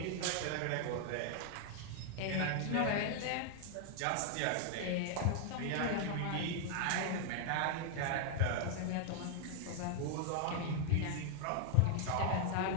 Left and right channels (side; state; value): both; different; correlation 0.00